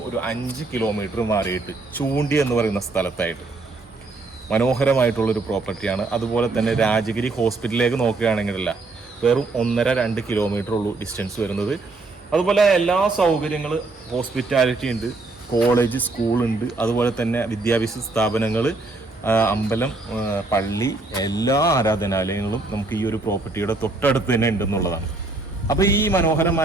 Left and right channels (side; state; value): left; quieter; 3.4 dB